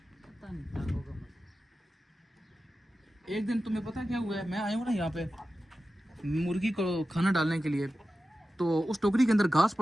पता नहीं क्या होगा। एक दिन तुम्हें पता क्या हुआ है, मैं आया हूँ ना यहाँ पे मुर्गी को खाना डालने के लिए, तो उस टोकरी के अंदर घास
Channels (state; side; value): normal; both; correlation 0.93